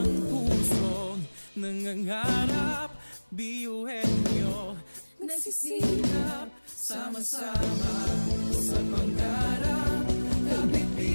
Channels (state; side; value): inverted; both; correlation -1.00